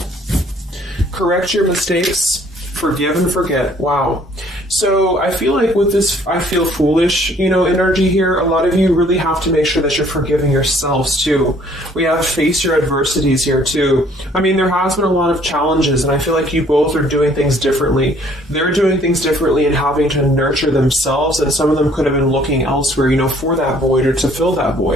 Correct your mistakes, forgive and forget. Wow. So I feel like with this, I feel foolish, you know, energy here. A lot of you really have to make sure that you're forgiving yourselves too. We have face your adversities here too. I mean, there has been a lot of challenges, and I feel like you both are doing things differently. They're doing things differently and having to nurture themselves, and some of them could have been looking elsewhere, you know, for that void or to fill that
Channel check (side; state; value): both; normal; correlation 0.60